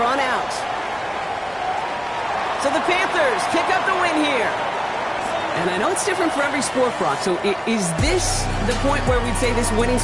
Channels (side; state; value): both; identical; correlation 1.00